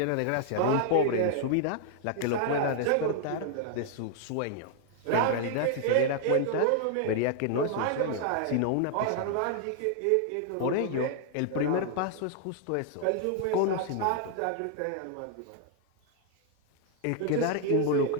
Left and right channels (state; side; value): different; both; correlation 0.00